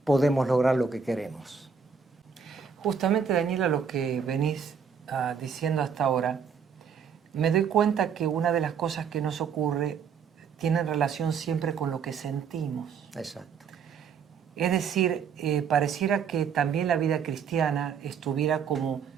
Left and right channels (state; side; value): quieter; left; 6.5 dB